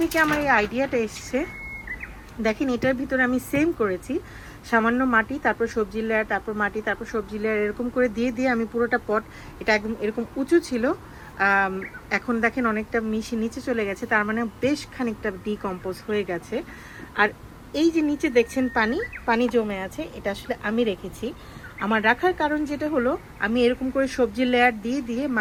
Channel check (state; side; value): identical; both; correlation 1.00